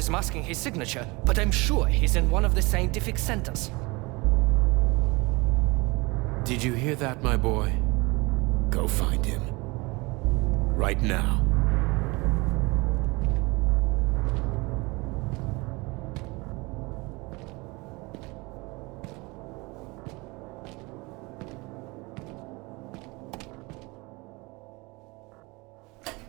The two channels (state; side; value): quieter; left; 25.2 dB